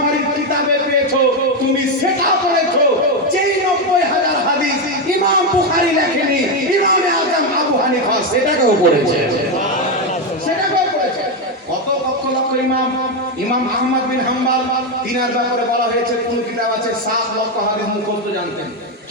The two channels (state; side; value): normal; both; correlation 0.07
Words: কিতাবে পেয়েছো তুমি সেটা পড়েছো। যেই 90000 হাদিস ইমাম বুখারী লেখেনি, ইমামে আযম আবু হানিফা সেটাকেও পড়েছে, সেটাকেও পড়েছে। কত লক্ষ লক্ষ ইমাম আহমদ বিন হাম্বল তিনার ব্যাপারে বলা হয়েছে কোন কিতাব আছে 7 লক্ষ হাদিস মুখস্থ জানতেন,